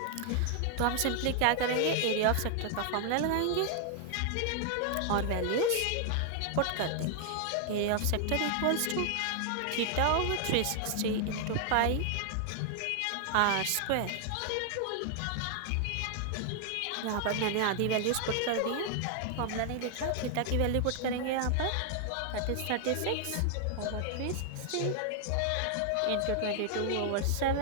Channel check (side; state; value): both; different; correlation 0.00